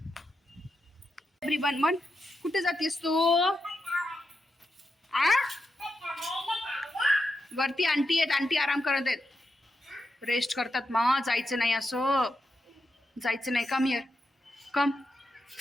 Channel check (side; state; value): both; normal; correlation 0.86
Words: एव्हरीवन मन कुठे जातेस तू आ वरती आंटी आहेत आंटी आराम करत आहेत रेस्ट करतात मा जायचं नाही असं जायचं नाही कम हिअर कम